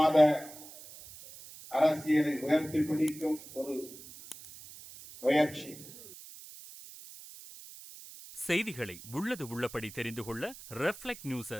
அரசியலை உயர்த்தி பிடிக்கும் ஒரு முயற்சி. செய்திகளை உள்ளது உள்ளபடி தெரிந்து கொள்ள ரெஃப்ளெக்ட் நியூஸை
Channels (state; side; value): noise; right; hiss, 16 dB below the sound